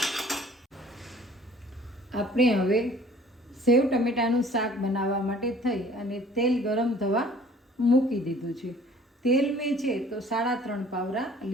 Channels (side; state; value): both; normal; correlation 0.53